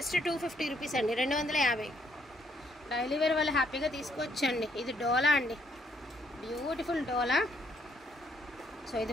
250 rupees అండి, 250. డైలీ వేర్ వాళ్ళు హ్యాపీగా తీసుకోవచ్చండి. ఇది డోలా అండి, బ్యూటిఫుల్ డోలా. సో ఇది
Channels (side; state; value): both; normal; correlation 0.70